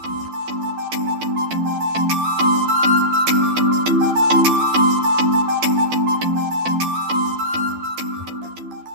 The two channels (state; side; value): late; left; 12 ms